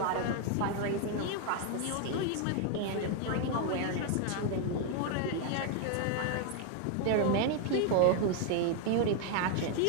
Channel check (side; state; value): both; different; correlation 0.00